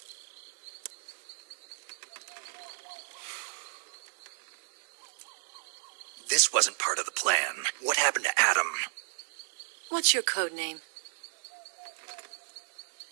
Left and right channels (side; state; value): left; silent; digital silence